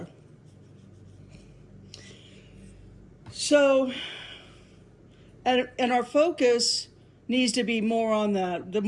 So, and our focus needs to be more on that. The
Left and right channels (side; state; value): both; identical; correlation 1.00